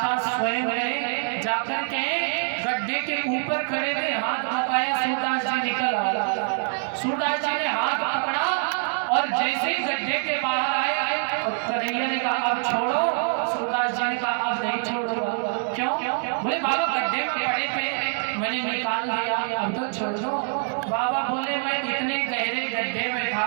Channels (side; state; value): left; silent; 62 dB below the other